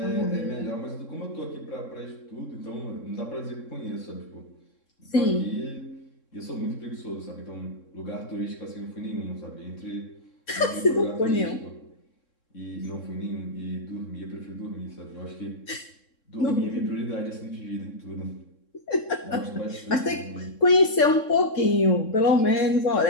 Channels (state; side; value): late; right; 3.7 ms